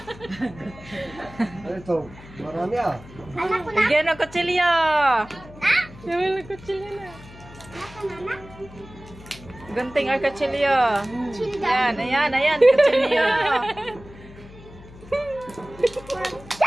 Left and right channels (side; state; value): left; noise; hum, 19 dB below the sound